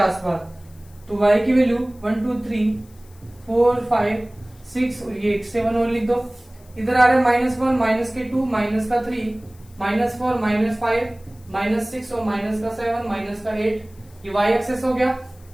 तो y की वैल्यू 1, 2, 3, 4, 5, 6 और ये 7 और लिख दो। इधर आ रहा है -1, माइनस के 2, माइनस का 3, -4, -5, -6 और माइनस का 7, माइनस का 8। ये y एक्सेस हो गया,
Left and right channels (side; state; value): left; noise; hiss, 28 dB below the sound